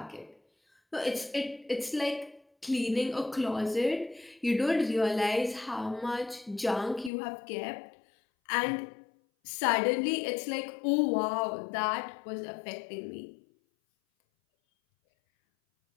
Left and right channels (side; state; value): right; drops out; at 7.1 s